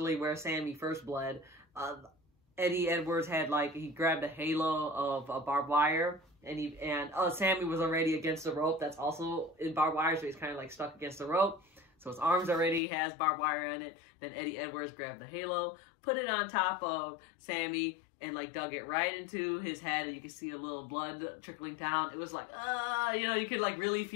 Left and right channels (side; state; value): right; drops out; at 12.8 s